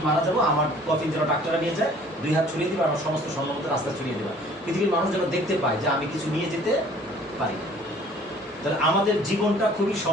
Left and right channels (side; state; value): both; normal; correlation 0.53